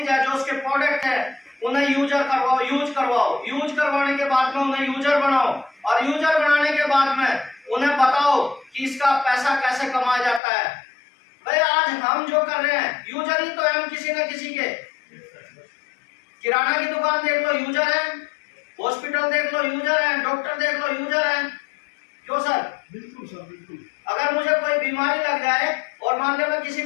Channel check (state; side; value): drops out; right; at 10.4 s